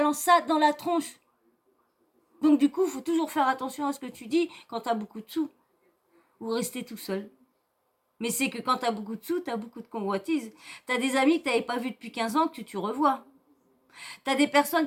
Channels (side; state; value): both; identical; correlation 1.00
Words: ça dans la tronche. Donc du coup, faut toujours faire attention à ce que tu dis quand t'as beaucoup de sous ou rester tout seul. Mais c'est que quand t'as beaucoup de sous, t'as beaucoup de convoitises. T'as des amis que t'avais pas vus depuis 15 ans que tu revois. T'as des